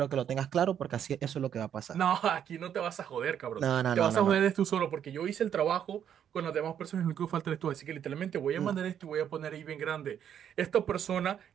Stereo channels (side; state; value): left; quieter; 9.2 dB